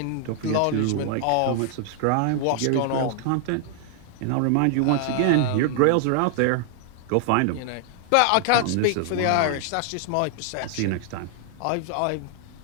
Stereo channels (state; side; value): different; both; correlation 0.00